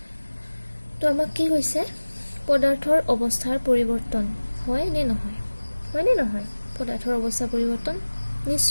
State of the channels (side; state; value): both; inverted; correlation -1.00